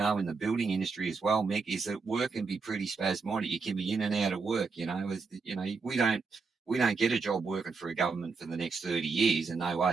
in the building industry as well, Mick, is that work can be pretty spasmodic. You can be in and out of work. We don't get a job working for a government for the next 30 years, and no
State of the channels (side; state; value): left; quieter; 4.7 dB